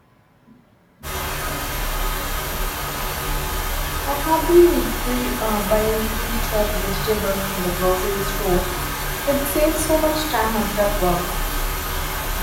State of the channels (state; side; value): identical; both; correlation 1.00